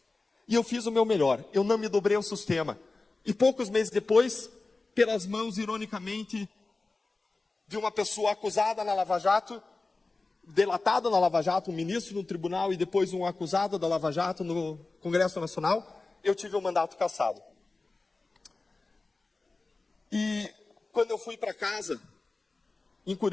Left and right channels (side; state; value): right; quieter; 3.5 dB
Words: E eu fiz o meu melhor, eu não me dobrei ao sistema. E poucos meses depois, pelas mãos, ironicamente, de uma pessoa acusada na Lava Jato, delatada na Lava Jato, um ministro no tribunal e depois um acusado da Lava Jato no Congresso Nacional, eu tive o mandato cassado. E quando eu fui para casa, em